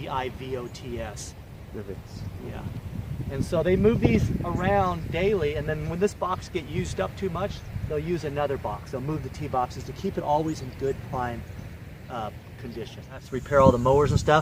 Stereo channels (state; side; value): identical; both; correlation 1.00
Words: Divots. Yeah. And so they move these around daily, and then when this box gets used up too much, they'll use another box. They'll move the tee boxes to keep it always in good prime condition. That's to repair all the mowers and